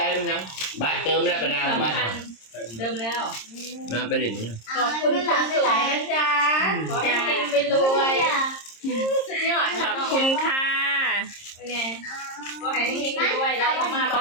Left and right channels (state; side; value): late; right; 26 ms